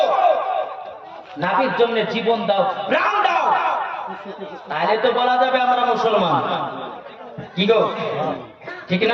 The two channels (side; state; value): both; identical; correlation 1.00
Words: নবীর জন্য জীবন দাও, প্রাণ দাও, তাহলে তো বলা যাবে আমরা মুসলমান। কি গো ঠিক